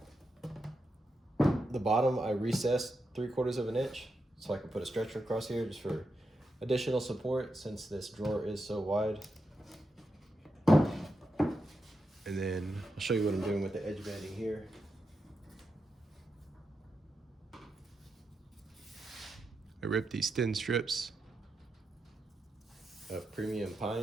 The bottom I recessed 3/4 of an inch so I can put a stretcher across here just for additional support since this drawer is so wide. And then I'll show you what I'm doing with the edge banding here. I ripped these thin strips of premium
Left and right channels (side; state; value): both; normal; correlation 0.86